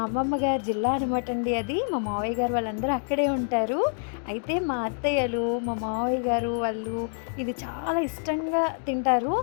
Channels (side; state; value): right; silent; 60 dB below the other